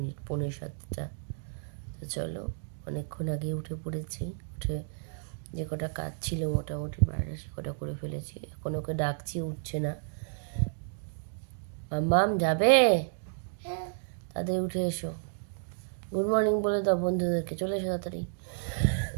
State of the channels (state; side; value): silent; left; digital silence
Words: তো চলো, অনেকক্ষণ আগে উঠে পড়েছি। উঠে যে কটা কাজ ছিল মোটামুটি বাইরে সে কটা করে ফেলেছি। এখন ওকে ডাকছি, উঠছে না। মাম্মাম যাবে? তাদের উঠে এসো, গুড মর্নিং বলে দাও বন্ধুদেরকে, চলে এসো তাড়াতাড়ি।